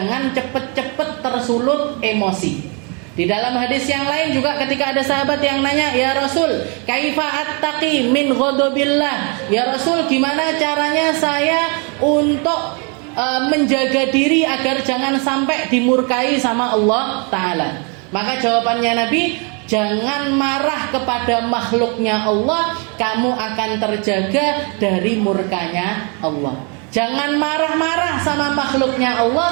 cepet-cepet tersulut emosi. Di dalam hadis yang lain juga ketika ada sahabat yang nanya, ya Rasul, kaifa attaqi min ghadabillah? Ya Rasul, gimana caranya saya untuk menjaga diri agar jangan sampai dimurkai sama Allah Ta'ala? Maka jawabannya Nabi, jangan marah kepada makhluknya Allah, kamu akan terjaga dari murkanya Allah. Jangan marah-marah sama makhluknya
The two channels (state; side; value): quieter; left; 34.7 dB